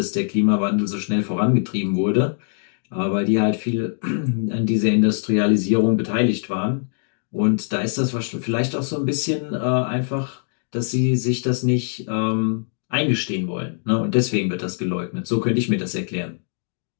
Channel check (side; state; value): right; silent; 58 dB below the other